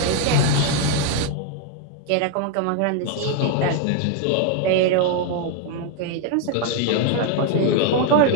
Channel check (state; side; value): different; both; correlation 0.01